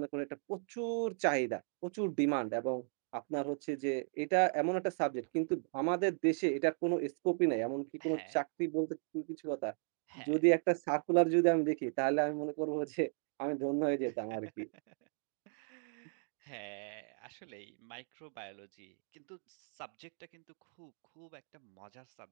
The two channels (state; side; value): silent; left; 53 dB below the other